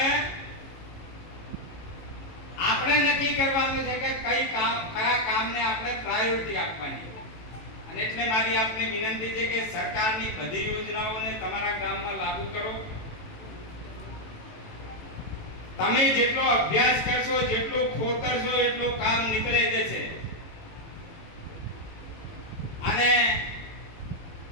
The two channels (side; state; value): right; late; 18 ms